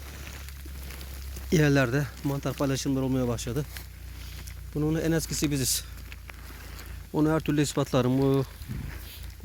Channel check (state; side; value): identical; both; correlation 1.00